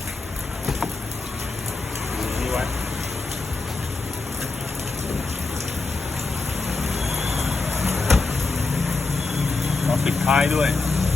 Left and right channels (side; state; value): right; quieter; 3.7 dB